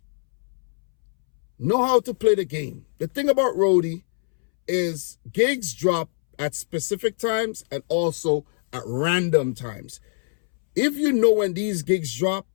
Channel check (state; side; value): silent; right; 63 dB below the other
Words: Know how to play the game. The thing about Roadie is gigs drop at specific times and also at random times. If you know when these gigs drop